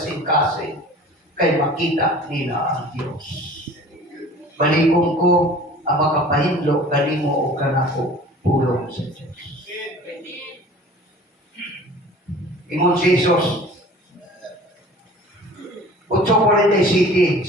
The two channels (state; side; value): normal; both; correlation 0.44